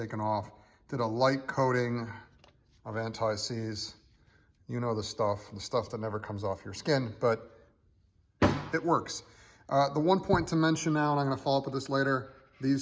off. Did a light coating of anti-seize. You know the stuff that never comes off your skin, but it works. The one point to mention now, and I'm gonna follow up with this later,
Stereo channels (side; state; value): both; identical; correlation 1.00